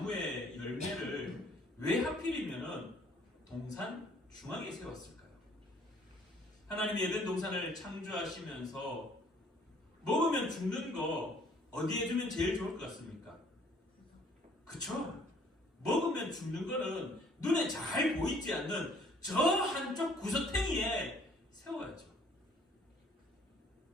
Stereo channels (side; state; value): both; normal; correlation 0.60